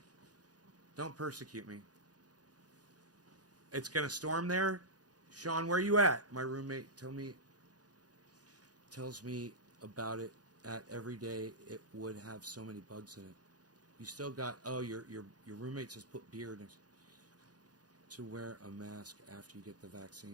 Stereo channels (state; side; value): late; left; 0.68 ms